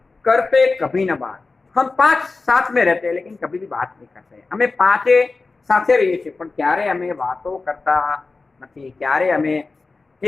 करते कभी न बात। हम 5 साथ में रहते हैं लेकिन कभी भी बात नहीं करते। हमें 5 साथे रहीए छे पण क्यारे अमे वातो करता नहीं, क्यारे अमे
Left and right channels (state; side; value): quieter; right; 3.9 dB